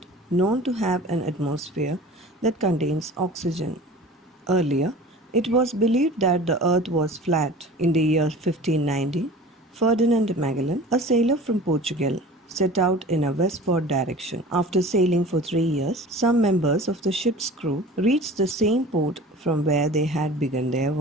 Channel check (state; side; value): normal; both; correlation 0.41